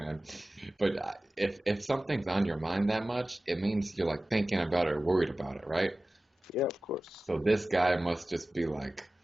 But if something's on your mind that much, it means you're like thinking about it or worried about it, right? Yeah, of course. So this guy must just be like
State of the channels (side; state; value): both; normal; correlation 0.96